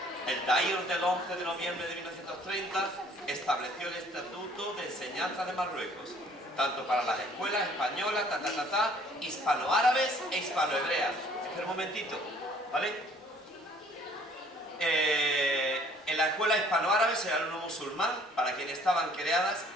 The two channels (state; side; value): normal; both; correlation 0.57